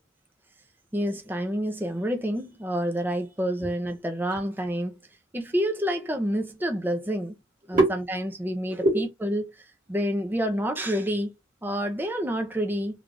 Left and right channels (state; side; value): normal; both; correlation 0.75